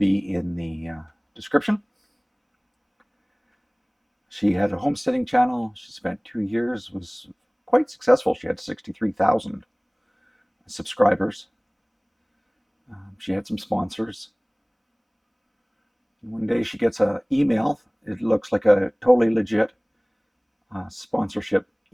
in the description. She had a homesteading channel. She spent 2 years, was quite successful. She had 63,000 subscribers. She had some sponsors. One day she gets an email. It looks like a totally legit sponsorship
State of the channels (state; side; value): identical; both; correlation 1.00